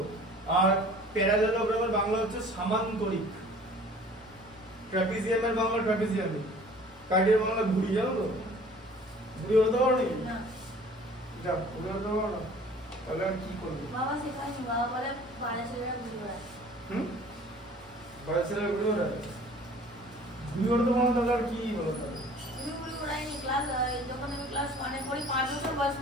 আর প্যারালেলোগ্রামের বাংলা হচ্ছে সামান্তরিক। ট্রাপিজিয়ামের বাংলা ট্রাপিজিয়ামিক। কার্ডের বাংলা ঘুড়ি, জানো তো? ঘুড়ি হতে পারো নাকি? না। যা, ঘুড়ি হতে পারো না, তাহলে আর কি করবে? বাবা শেখায়নি, বাবা বলে পাড়া ছেলেরা ঘুড়ি ওড়ায়। পাড়া ছেলেরা ঘুড়ি ওড়ায়? ঘুড়ি ওড়াতে পারো না, তাহলে আর কি বলো? তাহলে ঘুড়ি ওড়াইনি। যখন আমি ক্লাস 1 এ পড়ি, 5 বছর বয়স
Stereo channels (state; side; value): normal; both; correlation 0.49